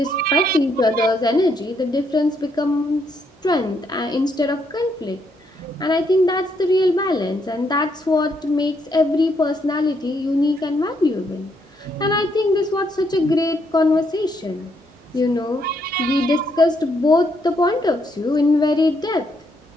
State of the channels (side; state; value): both; normal; correlation 0.75